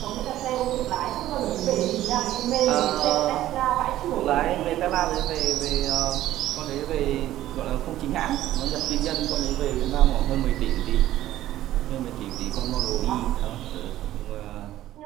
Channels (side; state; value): left; quieter; 13.9 dB